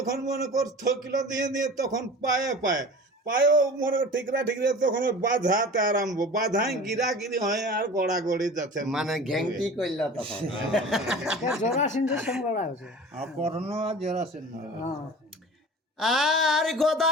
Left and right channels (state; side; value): normal; both; correlation 0.39